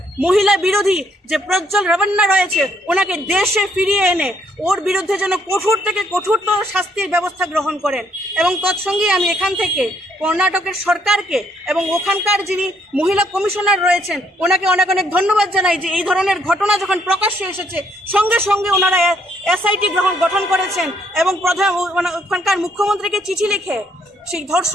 মহিলা বিরোধী যে প্রজ্জ্বল রেভান্না রয়েছে ওনাকে দেশে ফিরিয়ে এনে ওর বিরুদ্ধে যেন কঠোর থেকে কঠোরতর শাস্তির ব্যবস্থা গ্রহণ করেন। এবং তৎসঙ্গে আমি এখান থেকে কর্ণাটকের সরকারকে এবং ওখানকার যিনি মহিলা কমিশনার রয়েছেন ওনাকে অনেক অনেক ধন্যবাদ জানাই যে এই ধরনের ঘটনা যখন প্রকাশ্যে এসেছে সঙ্গে সঙ্গে ওনারা এসআইটি গঠন করেছেন এবং ওখানকার মুখ্যমন্ত্রীকে চিঠি লিখে সেই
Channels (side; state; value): both; normal; correlation 0.69